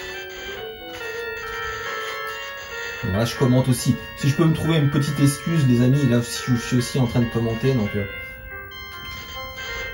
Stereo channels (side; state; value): both; identical; correlation 1.00